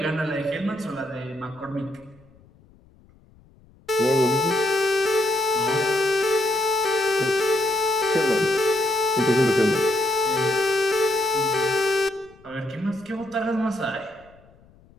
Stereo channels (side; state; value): left; noise; rumble, 28 dB below the sound